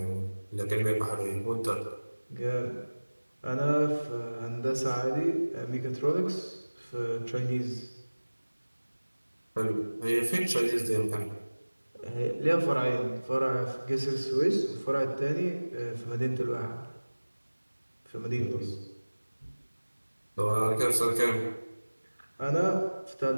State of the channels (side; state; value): both; inverted; correlation -1.00